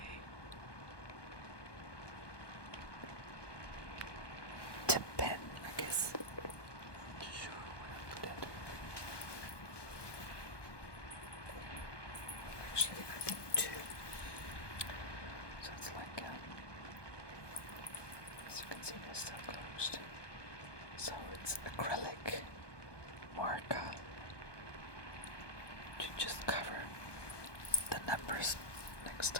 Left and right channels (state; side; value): late; right; 1.2 ms